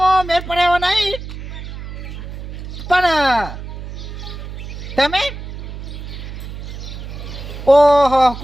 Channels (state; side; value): noise; right; hum, 10 dB below the sound